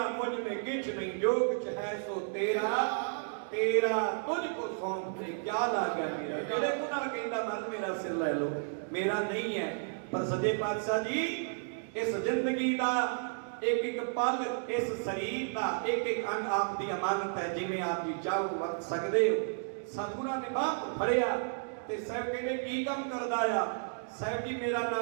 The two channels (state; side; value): silent; left; digital silence